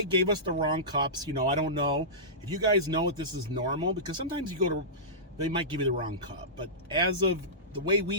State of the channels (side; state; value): both; normal; correlation -0.19